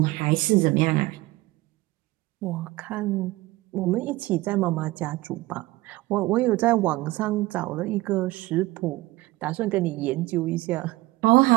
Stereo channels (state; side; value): quieter; left; 19.6 dB